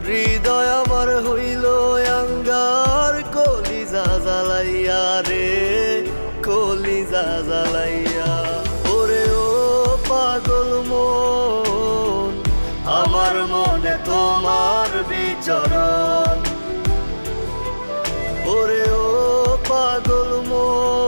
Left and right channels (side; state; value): both; inverted; correlation -1.00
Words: হৃদয় আমার হইল আঙ্গার, কলিজা জ্বালাইয়া রে কলিজা জ্বালাইয়া। ওরে ও পাগল মন, আমার মনে তোমার বিচরণ। ওরে ও পাগল